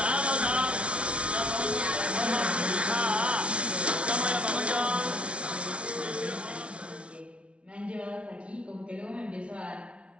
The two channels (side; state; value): left; late; 0.060 ms